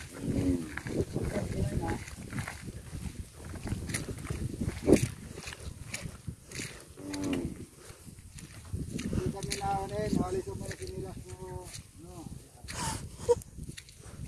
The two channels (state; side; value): identical; both; correlation 1.00